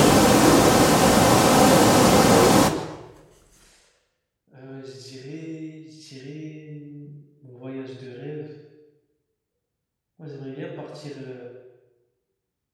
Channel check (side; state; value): both; identical; correlation 1.00